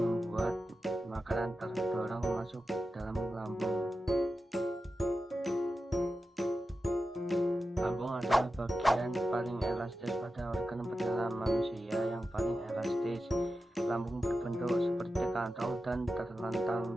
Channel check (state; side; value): normal; both; correlation 0.92